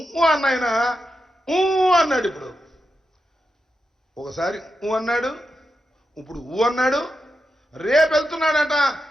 అన్న ఆయన అన్నాడు. ఇప్పుడు ఒకసారి అన్నాడు, ఇప్పుడు అన్నాడు. రేపు వెళ్తున్నాడట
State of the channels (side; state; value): both; normal; correlation 0.88